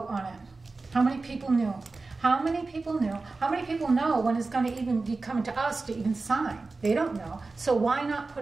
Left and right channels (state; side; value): quieter; left; 3.7 dB